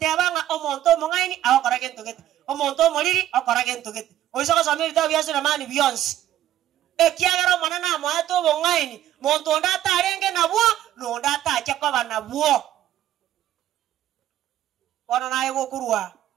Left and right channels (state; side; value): quieter; left; 12.5 dB